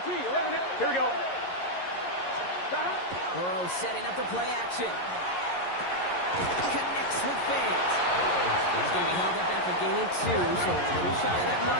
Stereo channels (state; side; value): late; right; 11 ms